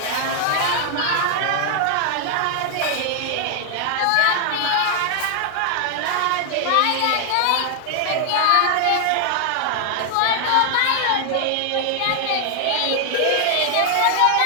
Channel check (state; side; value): different; both; correlation 0.00